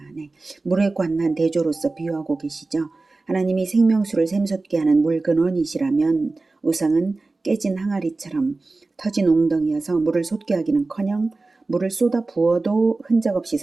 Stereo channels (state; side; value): quieter; left; 3.4 dB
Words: 네. 물에 관한 대조로서 비유하고 계시죠. 하나님이 생명수를 샘솟게 하는 물 근원이시라면 우상은 깨진 항아리처럼 터진 웅덩이여서 물을 솟게 하기는커녕 물을 쏟아 부어도 흔적 없이